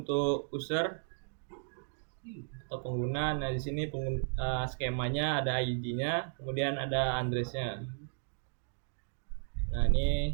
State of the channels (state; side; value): silent; left; digital silence